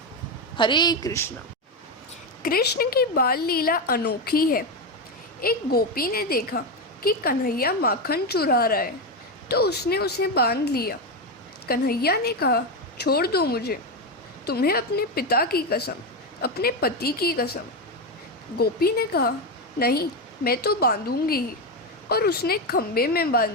हरे कृष्णा। कृष्ण की बाल लीला अनोखी है। एक गोपी ने देखा कि कन्हैया माखन चुरा रहा है, तो उसने उसे बांध लिया। कन्हैया ने कहा छोड़ दो मुझे, तुम्हें अपने पिता की कसम, अपने पति की कसम। गोपी ने कहा नहीं, मैं तो बांधूंगी ही, और उसने खंबे में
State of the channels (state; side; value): normal; both; correlation 0.11